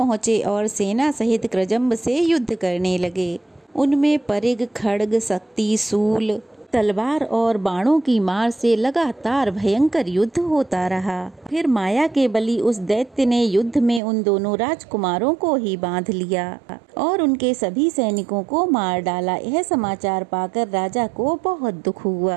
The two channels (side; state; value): left; drops out; at 14.0 s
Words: और सेना सहित कृजंब से युद्ध करने लगे। उनमें परिग, खड्ग, शक्ति, शूल, तलवार और बाणों की मार से लगातार भयंकर युद्ध होता रहा। फिर माया के बली उस दैत्य ने युद्ध में उन दोनों राजकुमारों को ही बांध लिया और उनके सभी सैनिकों को मार डाला। यह समाचार पाकर राजा को बहुत दुख